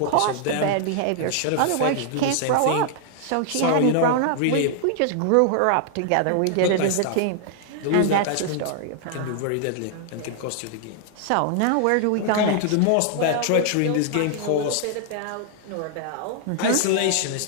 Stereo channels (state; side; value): different; both; correlation 0.00